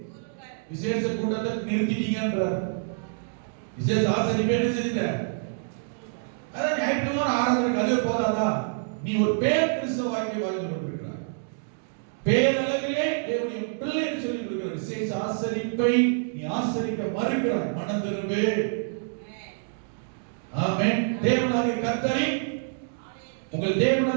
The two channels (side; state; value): left; silent; digital silence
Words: விசேஷ கூட்டத்தை நிறுத்திட்டீங்கன்றார். விசேஷ ஆசரிப்பு என்ன செய்யுங்க? அதான் ஞாயிற்றுக்கிழமை ஆராதனைக்கு அதுவே போதாதா? நீ ஒரு பேர் கிறிஸ்தவ வாழ்க்கை வாழ்ந்து கொண்டிருக்கிறாய். பேரளவிலே தேவனுடைய பிள்ளை என்று சொல்லி கொடுக்கிற விசேஷ ஆசரிப்பை நீ ஆசரிக்க மறுக்கிறாய். மனம் திரும்பு. ஆமென். தேவனாகிய கர்த்தரை, உங்கள்